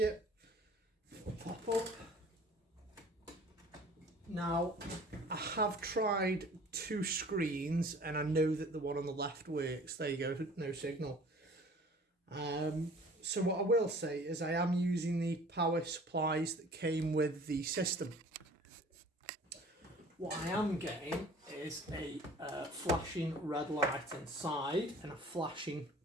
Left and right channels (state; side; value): normal; both; correlation 0.48